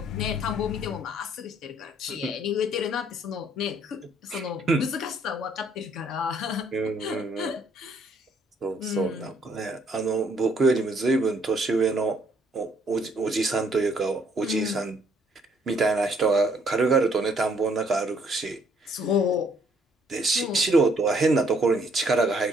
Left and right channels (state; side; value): normal; both; correlation 0.66